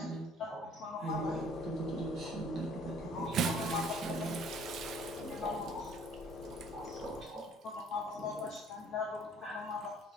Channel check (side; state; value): both; normal; correlation 0.56